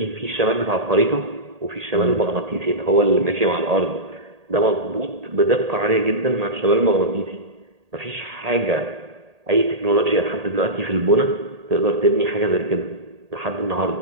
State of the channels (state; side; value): late; left; 1.8 ms